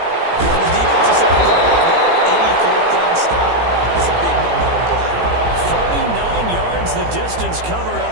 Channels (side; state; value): left; late; 18 ms